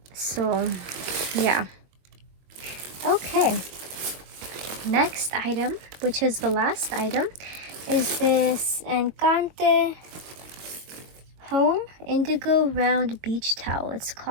So, yeah. Okay. Next item, which is the last item, is this Encante Home Indigo Round Beach Towel. It's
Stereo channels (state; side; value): late; left; 22 ms